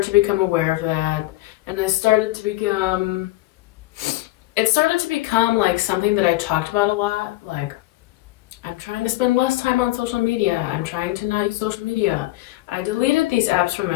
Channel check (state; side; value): quieter; right; 17.7 dB